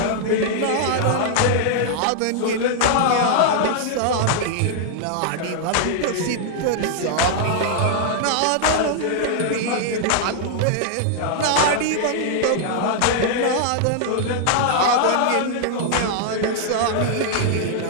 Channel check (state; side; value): different; both; correlation -0.01